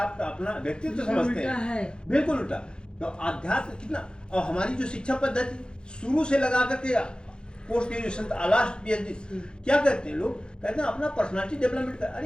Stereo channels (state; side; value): late; right; 0.049 ms